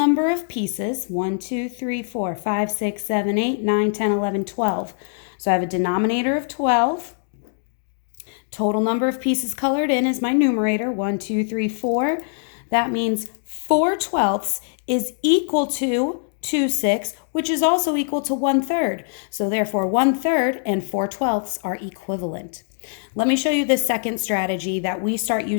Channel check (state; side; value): silent; right; digital silence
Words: of pieces. 1, 2, 3, 4, 5, 6, 7, 8, 9, 10, 11, 12. So I have a denominator of 12. Total number of pieces colored in is my numerator, 1, 2, 3, 4. That means 4/12 is equal to 2/6, which is also equal to 1/3. So therefore 1/3 and 4/12 are equivalent. Let me show you the second strategy that we start